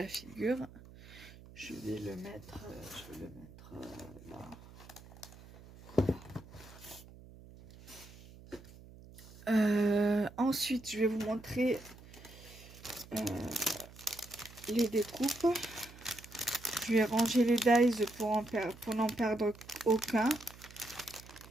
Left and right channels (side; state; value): right; noise; hum, 19 dB below the sound